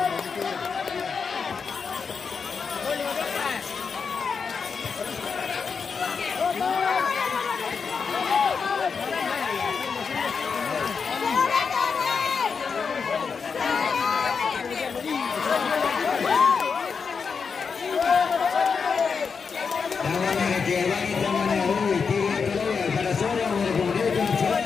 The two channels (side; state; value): right; quieter; 5.6 dB